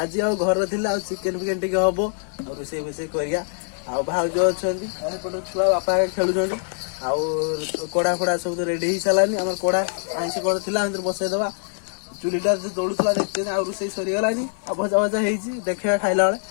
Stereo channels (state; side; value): silent; right; 61 dB below the other